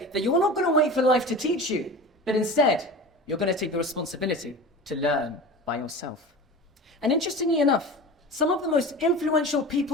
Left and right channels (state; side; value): normal; both; correlation 0.34